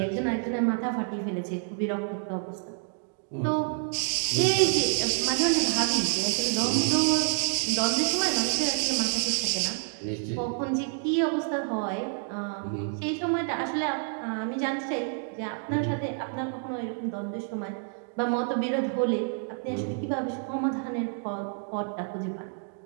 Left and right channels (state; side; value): silent; left; 56 dB below the other